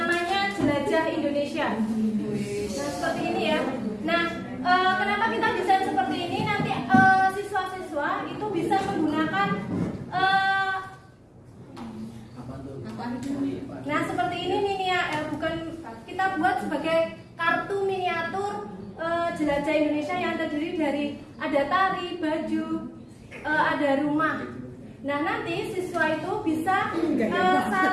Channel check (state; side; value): identical; both; correlation 1.00